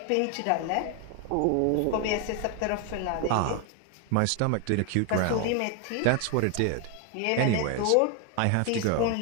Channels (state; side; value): different; both; correlation 0.01